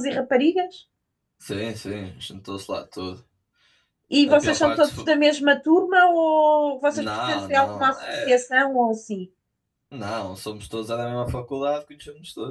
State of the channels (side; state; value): both; identical; correlation 1.00